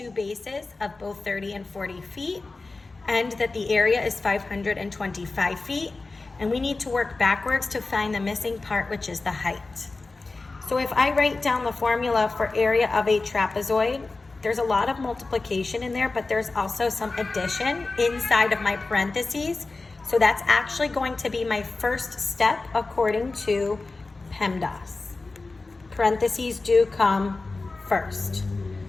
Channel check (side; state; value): right; quieter; 3.5 dB